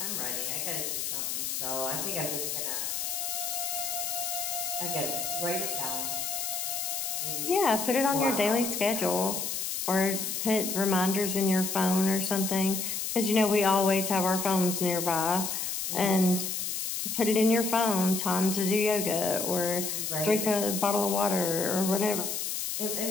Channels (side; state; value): left; noise; hiss, 2 dB below the sound